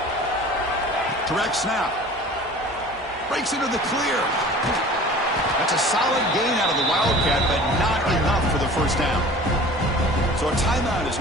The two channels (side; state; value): both; normal; correlation 0.43